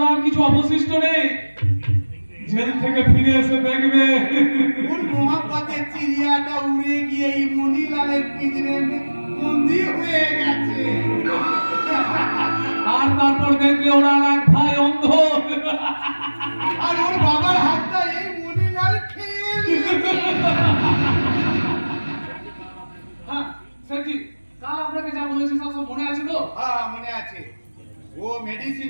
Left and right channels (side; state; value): both; inverted; correlation -1.00